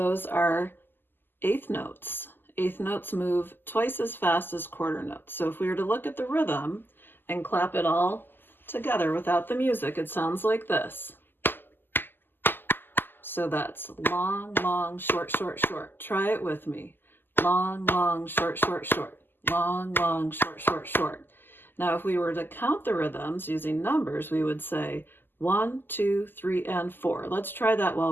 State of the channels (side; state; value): right; late; 0.094 ms